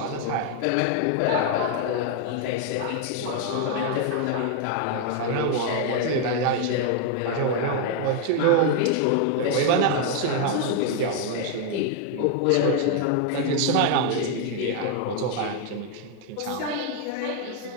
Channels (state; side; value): different; both; correlation 0.00